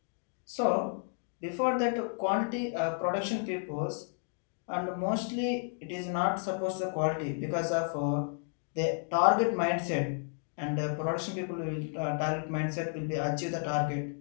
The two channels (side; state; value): right; silent; 56 dB below the other